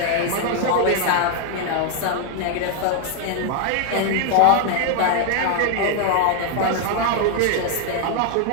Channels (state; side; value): different; both; correlation 0.00